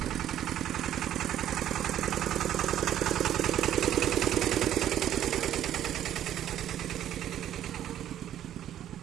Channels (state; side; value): quieter; left; 11.3 dB